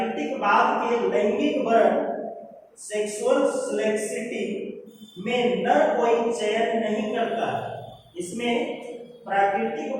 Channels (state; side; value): identical; both; correlation 1.00